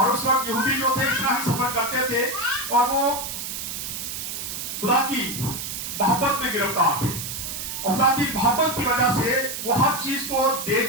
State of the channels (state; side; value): noise; right; hiss, 6 dB below the sound